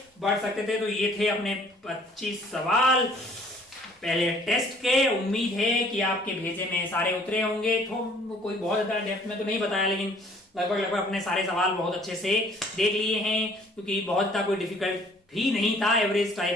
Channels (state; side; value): normal; both; correlation 0.57